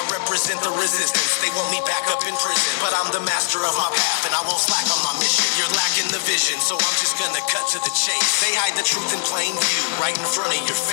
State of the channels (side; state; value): right; silent; 64 dB below the other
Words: represent the resistance, they want me back up in prison, but I'm the master of my path, and I won't slack on my mission. You're lacking the vision, so I'm just gonna cut to the chase. They hide the truth in plain view, right in front of your